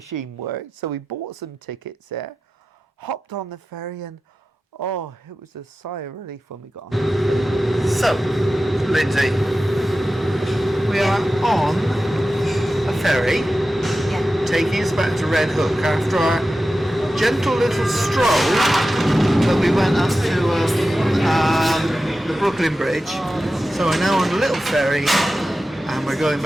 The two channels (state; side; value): normal; both; correlation 0.93